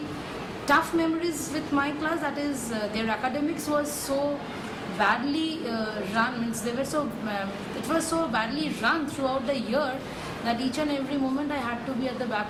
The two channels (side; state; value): both; identical; correlation 1.00